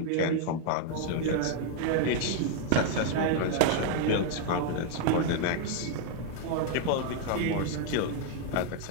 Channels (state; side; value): different; both; correlation 0.00